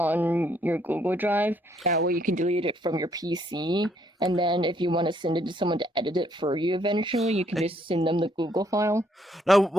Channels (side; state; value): both; normal; correlation 0.69